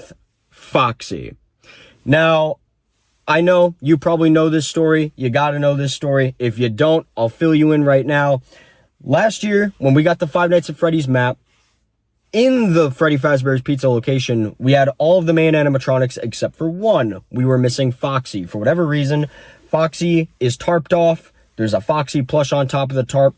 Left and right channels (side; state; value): both; identical; correlation 1.00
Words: Foxy. Now, I know you probably know this story. You got to know this story. If you don't, I'll fill you in right now. Last year, when we got the Five Nights at Freddy's map, in the Freddy Fazbear's Pizza location, we had all of the main animatronics except for one. We were missing Foxy. For whatever reason, Foxy is tarped off. There's a Foxy plush on top of the tarp.